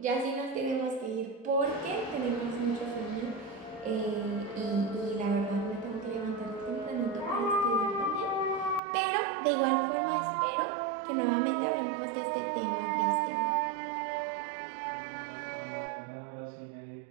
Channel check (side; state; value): left; drops out; at 8.8 s